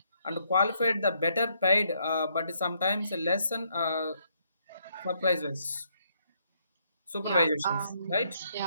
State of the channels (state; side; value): inverted; both; correlation -0.73